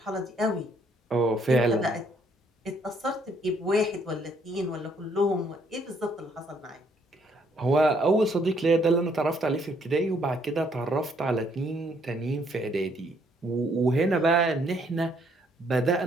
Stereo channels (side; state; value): both; normal; correlation 0.68